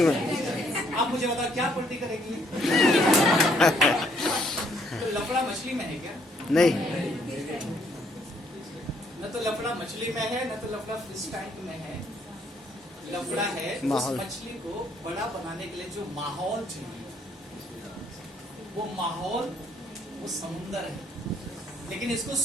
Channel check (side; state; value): both; normal; correlation 0.68